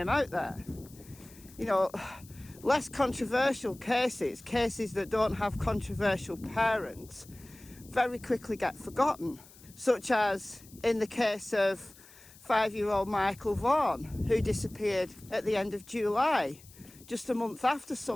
out there. You know, less controversial cases that don't have controversial parents, very quickly get forgotten. Such as in the case of 5-year-old Michael Vaughan, who disappeared at the end of July, just a month after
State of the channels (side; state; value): left; noise; hiss, 23 dB below the sound